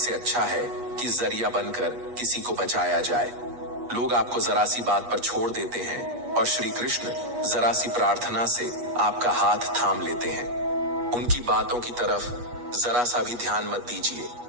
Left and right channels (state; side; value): late; left; 8.2 ms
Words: अच्छा है कि जरिया बनकर किसी को बचाया जाए। लोग आपको जरा सी बात पर छोड़ देते हैं और श्री कृष्ण जरा सी प्रार्थना से आपका हाथ थाम लेते हैं। उनकी बातों की तरफ जरा सा भी ध्यान मत दीजिए